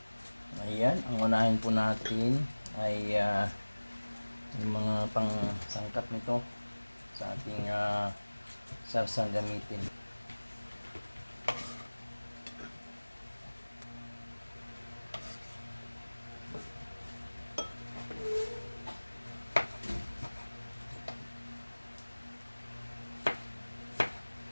Ayan, ang unahin po natin ay yung mga pang sangkap nito sa ating sarsang gamitin.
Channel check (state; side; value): inverted; both; correlation -1.00